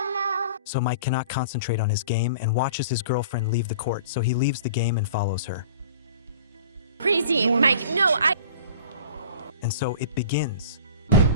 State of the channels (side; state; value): both; inverted; correlation -0.44